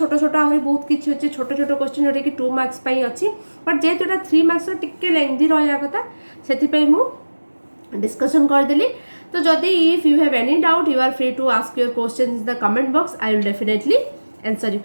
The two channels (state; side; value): inverted; both; correlation -1.00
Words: छोट आहुरी बहुत किछि अछि छोट छोट क्वेश्चन जोटा कि 2 मार्क्स पई अछि बट जे जोटा 3 मार्क्स रो टिके लेंथी रहया कथा सेति पई मु डिस्कशन कर देली तो जदि if you have any doubt you are free to ask your question in the comment box I will definitely answer you